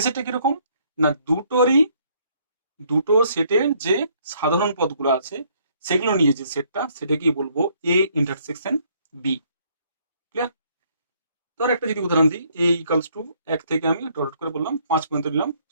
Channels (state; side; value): inverted; both; correlation -0.66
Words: সেটটা কিরকম না, দুটো সেটের যে সাধারণ পদগুলো আছে সেগুলো নিয়ে যে সেটটা, সেটাকে বলবো এ ইন্টারসেকশন বি। ক্লিয়ার? ধর একটা যদি উদাহরণ দিই, এ ইকালস টু 1 থেকে আমি ডট করে বললাম 5 পর্যন্ত নিলাম